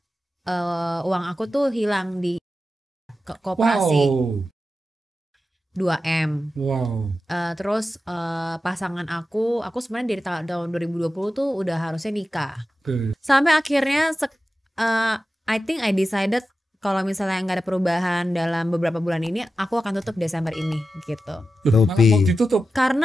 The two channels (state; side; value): normal; both; correlation 0.92